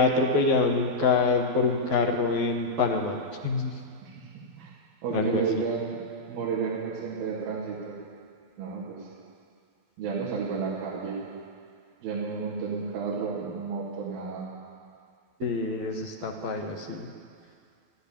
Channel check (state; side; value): late; left; 12 ms